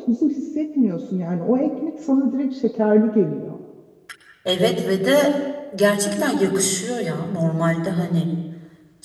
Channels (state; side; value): identical; both; correlation 1.00